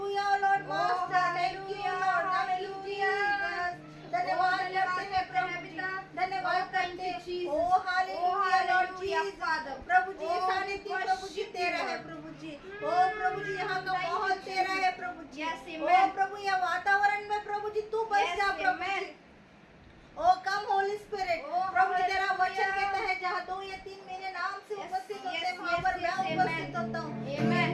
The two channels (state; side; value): identical; both; correlation 1.00